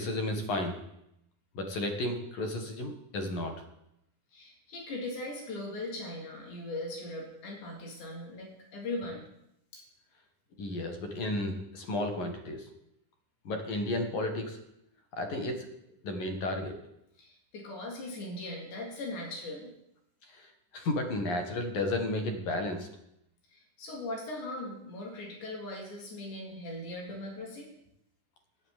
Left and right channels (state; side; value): late; right; 9.9 ms